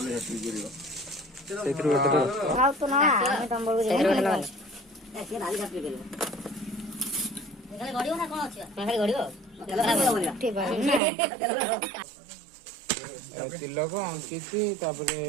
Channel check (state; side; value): drops out; left; at 11.0 s